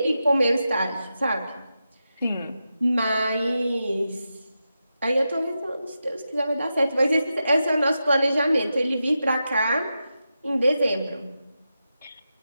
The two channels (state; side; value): inverted; both; correlation -0.89